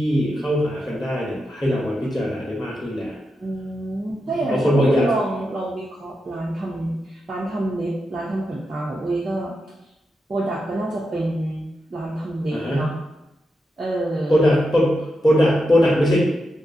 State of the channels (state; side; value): normal; both; correlation 0.87